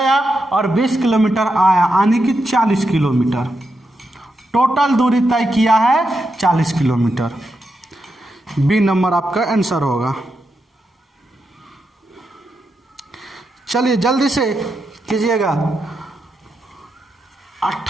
और 20 किलोमीटर आया, यानी कि 40 किलोमीटर। टोटल दूरी तय किया है 40 किलोमीटर। बी नंबर आपका आंसर होगा। चलिए जल्दी से कीजिएगा।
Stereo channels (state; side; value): normal; both; correlation 0.85